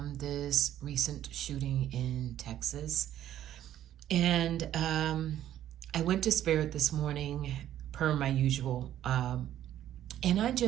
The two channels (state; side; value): quieter; left; 11.8 dB